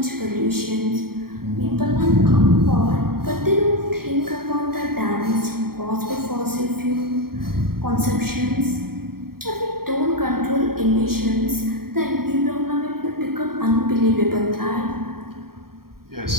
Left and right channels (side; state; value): left; late; 0.93 ms